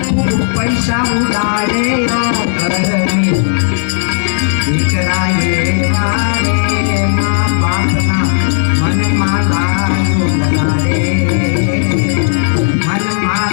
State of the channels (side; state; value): right; silent; 72 dB below the other